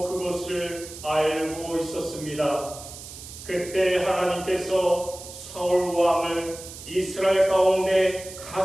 그것을 알고 있었습니다. 그때 하나님께서 서울왕을 이스라엘 가운데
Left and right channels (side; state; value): right; noise; hiss, 14 dB below the sound